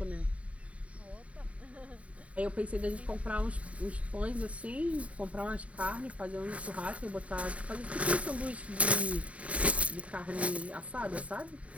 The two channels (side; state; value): left; late; 0.066 ms